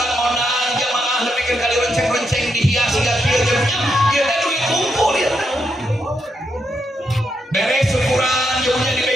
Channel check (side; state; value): both; normal; correlation 0.81